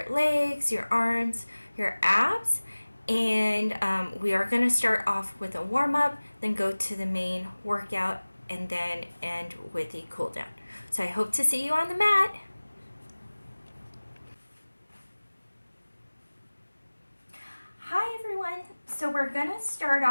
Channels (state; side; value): inverted; both; correlation -1.00